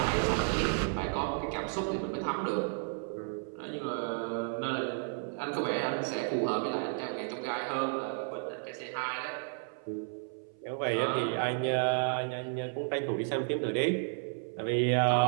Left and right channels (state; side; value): silent; left; 56 dB below the other